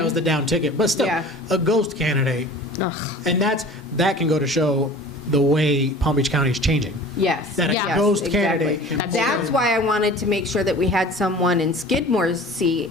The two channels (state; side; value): normal; both; correlation 0.42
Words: was the down ticket, but still, Yeah. a ghost candidate, Ugh. and that can go to show the way Palm Beach County is changing. Yes. That a Yeah. ghost exactly. candidate. Can That's pull That's in. why I wanted to make sure that we had someone in Skidmore's